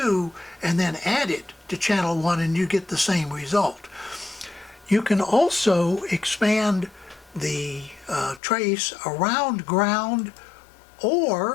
and then add it to channel 1, and you get the same result. You can also expand the trace around ground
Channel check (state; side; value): drops out; right; at 8.4 s